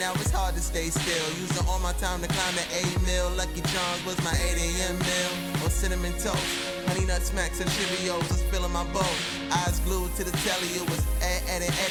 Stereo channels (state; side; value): identical; both; correlation 1.00